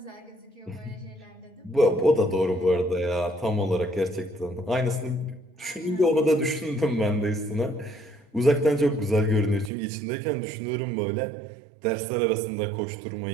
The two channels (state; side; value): drops out; left; at 9.7 s